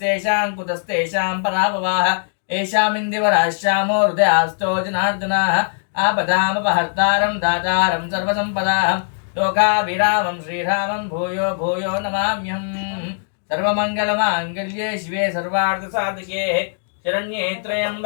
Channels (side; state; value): right; silent; digital silence